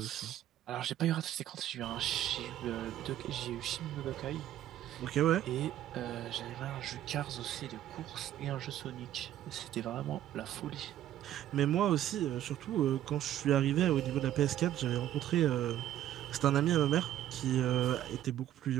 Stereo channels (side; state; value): left; quieter; 12.2 dB